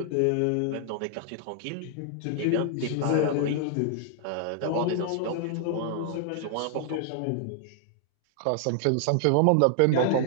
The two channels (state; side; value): different; both; correlation -0.01